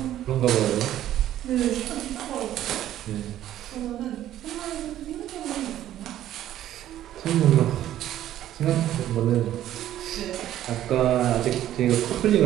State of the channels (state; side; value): quieter; left; 12.4 dB